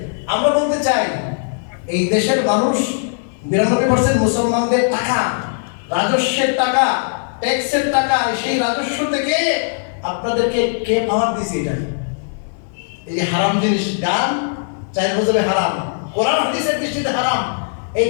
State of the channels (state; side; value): silent; right; digital silence